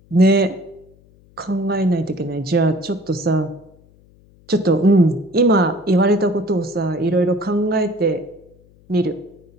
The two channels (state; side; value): noise; left; hum, 29 dB below the sound